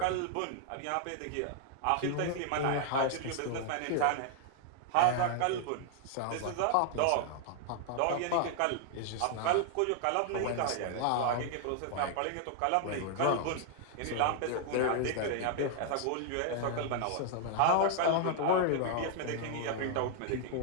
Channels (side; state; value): both; different; correlation 0.00